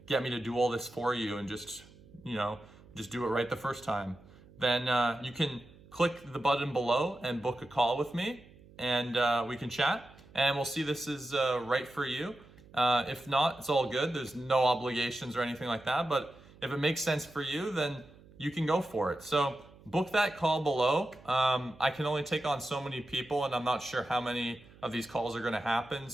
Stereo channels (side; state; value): right; noise; hum, 23 dB below the sound